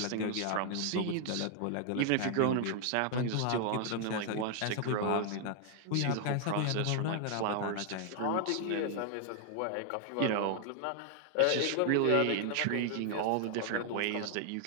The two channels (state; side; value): different; both; correlation 0.00